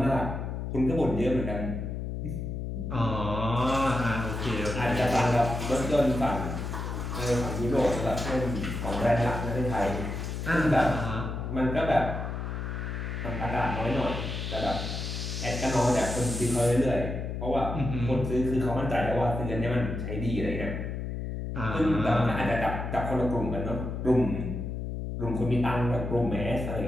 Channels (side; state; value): left; noise; hum, 4 dB below the sound